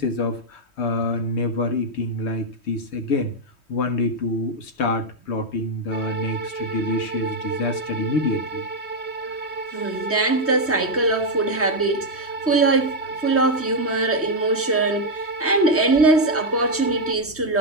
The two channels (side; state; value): right; late; 3.2 ms